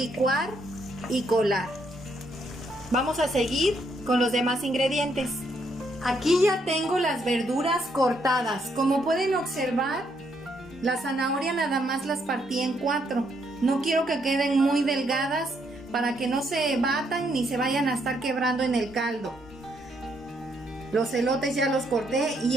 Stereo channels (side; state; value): both; normal; correlation 0.74